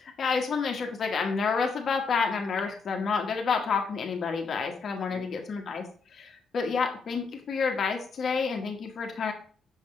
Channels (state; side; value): quieter; right; 4.9 dB